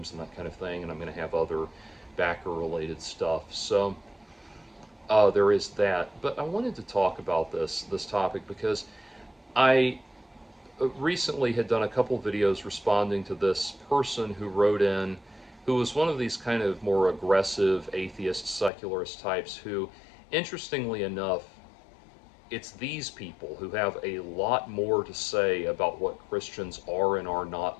and that kind of thing, and I'm going to have other backer related stuff. So there is that. But I wanted to talk about this topic because I recently had done a couple videos responding to this person who wrote in, who was one of these kind of more aggressive atheist secularist types who, interestingly enough, it's these people who have a lot more to say about what Christians are and are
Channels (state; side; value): drops out; right; at 18.7 s